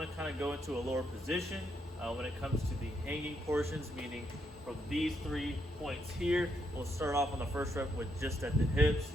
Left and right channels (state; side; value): normal; both; correlation 0.77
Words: to kind of go into a lower position when it comes to the hanging portions, meaning from these 3 points here, we'll start off on the first rep with just at the hips,